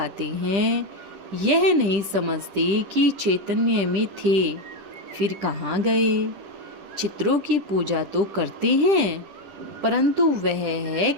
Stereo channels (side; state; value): left; late; 10 ms